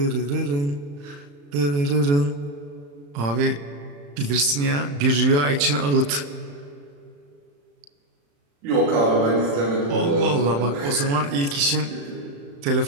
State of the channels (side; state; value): left; late; 35 ms